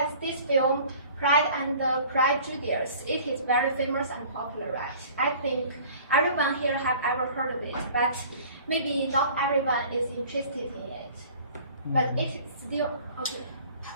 this film, Pride and Prejudice, it is very famous and popular, right? I think everyone here have ever heard of it, but maybe not everyone is interested in it. But it is still okay.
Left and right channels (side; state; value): both; inverted; correlation -0.48